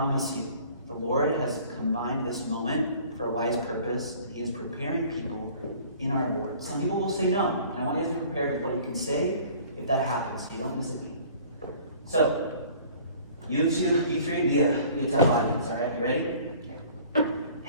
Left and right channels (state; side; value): inverted; both; correlation -0.50